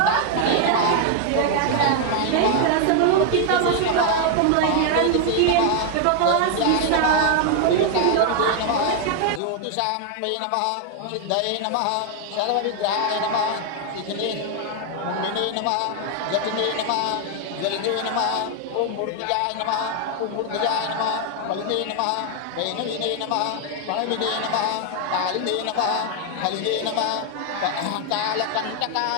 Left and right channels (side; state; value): both; different; correlation 0.00